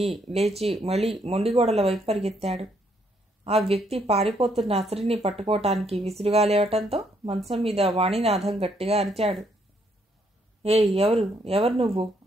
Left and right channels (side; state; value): both; normal; correlation 0.71